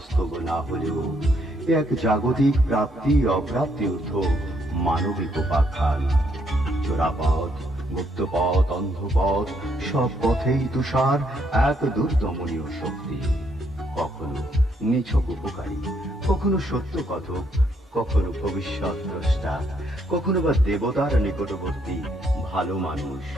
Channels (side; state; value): both; normal; correlation 0.72